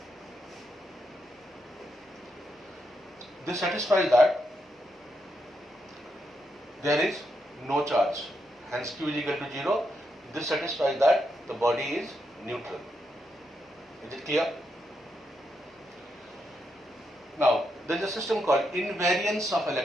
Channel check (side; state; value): both; normal; correlation 0.82